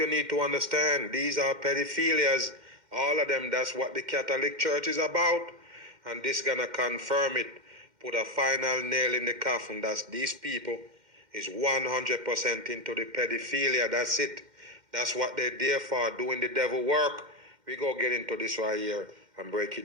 need to understand. These are pedophilias, all of them. That's what the Catholic Church is about. And this gonna confirm it, put a final nail in the coffin. That's these people is 100% into the pedophilia. That's it. That's what they're there for, doing the devil work. We go get into this right here and break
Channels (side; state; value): left; late; 2.1 ms